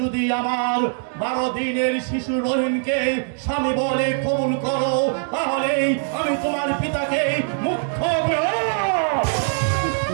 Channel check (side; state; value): left; silent; 64 dB below the other